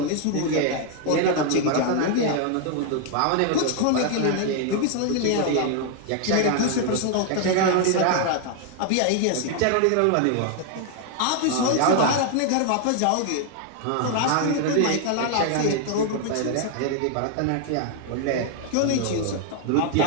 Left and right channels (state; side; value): different; both; correlation 0.00